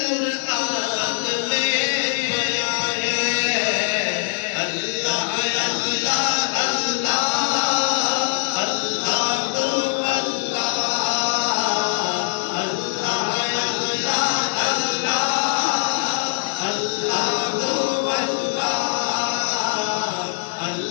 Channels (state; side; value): silent; right; 64 dB below the other